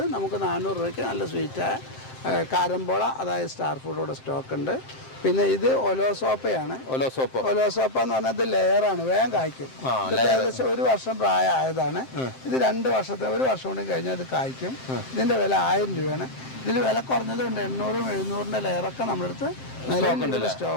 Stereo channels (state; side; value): late; right; 7.6 ms